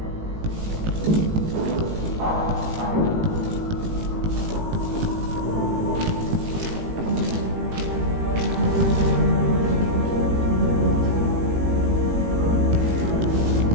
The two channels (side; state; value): left; late; 18 ms